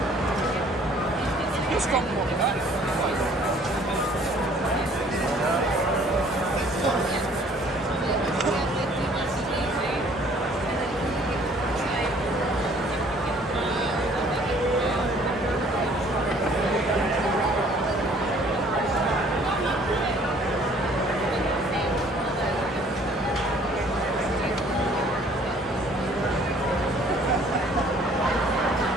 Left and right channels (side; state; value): both; normal; correlation 0.57